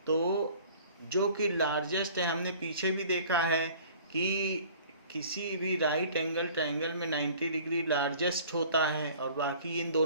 तो जो कि लार्जेस्ट है, हमने पीछे भी देखा है कि किसी भी राइट एंगल ट्रायंगल में 90 डिग्री लार्जेस्ट होता है और बाकी इन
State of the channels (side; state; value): both; inverted; correlation -0.49